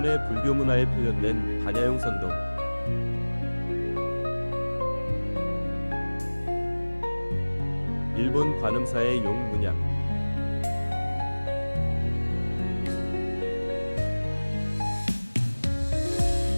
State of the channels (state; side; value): inverted; both; correlation -1.00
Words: 불교 문화에 표현된 반야용 선도. 일본 관음사의 용문양.